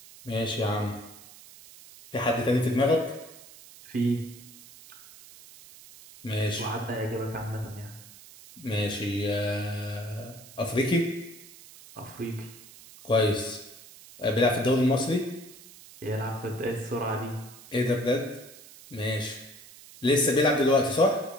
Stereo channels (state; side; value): noise; right; hiss, 20 dB below the sound